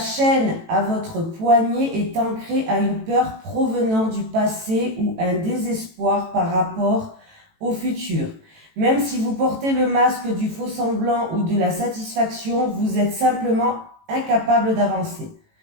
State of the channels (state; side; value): late; left; 18 ms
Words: à votre poignet est ancrée à une peur provenant du passé ou un désespoir par rapport au futur. Même si vous portez le masque du faux semblant ou de la satisfaction, vous êtes simplement incapable d'avancer.